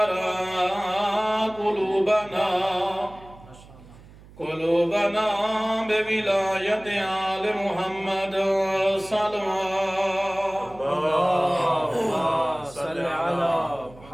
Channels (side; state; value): right; noise; hum, 22 dB below the sound